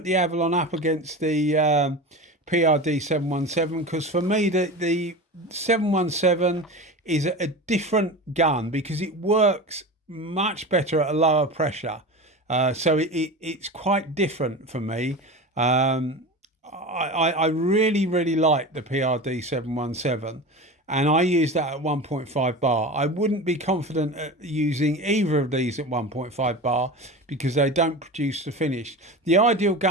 Avalon up against the PRD 717 because for me the 717 is a different gun because it works much better at a lower pressure, so it's quite different for me. I really like the PRD 717, and I use that at 1.5 bar. I wouldn't be confident at using either of these at 1.5 bar because they don't produce the finish. The ideal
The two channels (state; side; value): normal; both; correlation 0.29